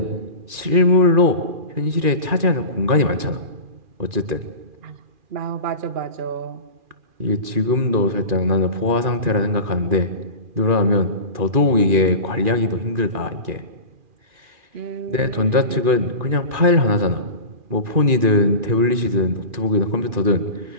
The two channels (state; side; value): late; left; 2.4 ms